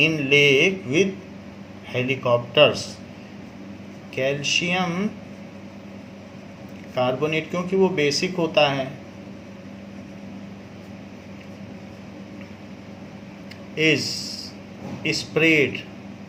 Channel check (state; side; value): identical; both; correlation 1.00